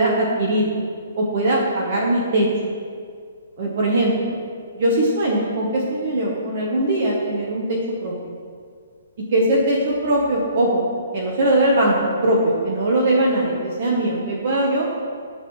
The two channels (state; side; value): inverted; both; correlation -0.55